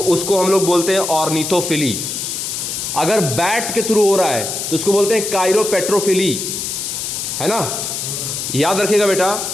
उसको हम लोग बोलते हैं ऑर्निथोफिली। अगर बैट के थ्रू हो रहा है तो उसको बोलते हैं काइरोपेट्रोफिली, है ना। याद रखिएगा बेटा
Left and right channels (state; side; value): noise; left; hiss, 4 dB below the sound